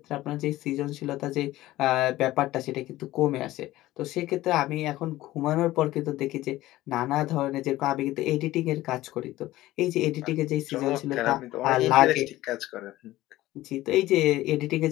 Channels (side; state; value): right; quieter; 16.4 dB